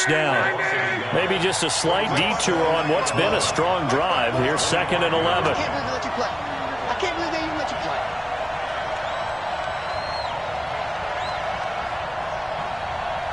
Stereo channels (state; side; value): identical; both; correlation 1.00